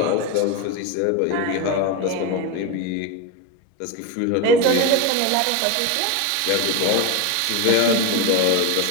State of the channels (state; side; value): different; both; correlation 0.03